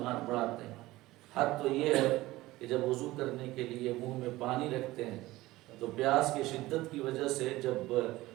ہاتھ بڑھاتے ہیں۔ حد تو یہ ہے کہ جب وضو کرنے کے لیے منہ میں پانی رکھتے ہیں تو پیاس کی شدت کی وجہ سے جب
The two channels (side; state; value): left; quieter; 18.1 dB